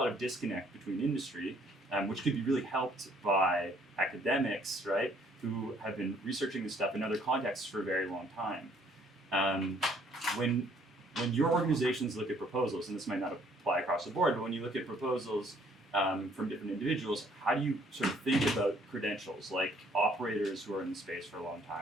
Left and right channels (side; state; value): both; normal; correlation 0.63